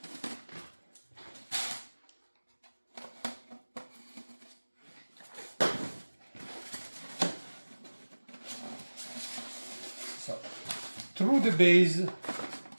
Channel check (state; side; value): inverted; both; correlation -1.00